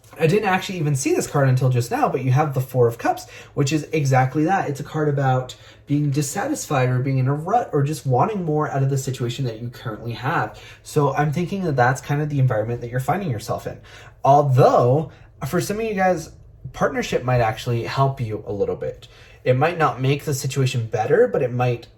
I didn't actually even see this card until just now, but you have the Four of Cups, which is exactly that. It's a card about being dissatisfied or being in a rut or just wanting more out of the situation that you currently have. So I'm thinking that that's kind of the environment that you're finding yourself in. Although, for some of you guys, partnership might actually help you a little bit. It might not make the situation better, but it might,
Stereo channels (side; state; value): both; identical; correlation 1.00